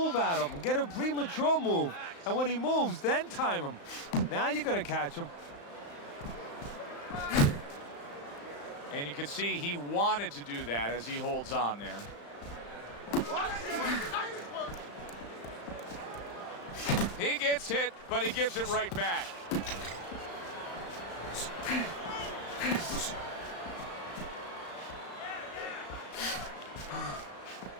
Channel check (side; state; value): right; late; 35 ms